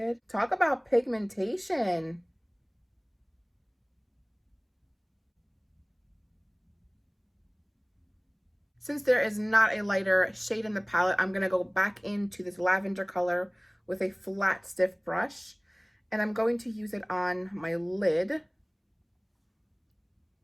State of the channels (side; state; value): both; identical; correlation 1.00